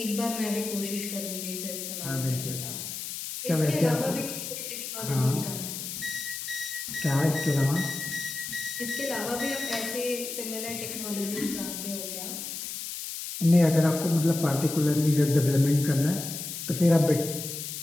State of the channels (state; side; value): noise; left; hiss, 7 dB below the sound